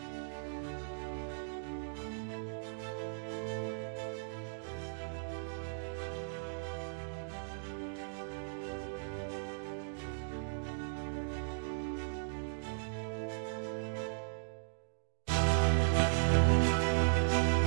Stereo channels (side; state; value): left; silent; digital silence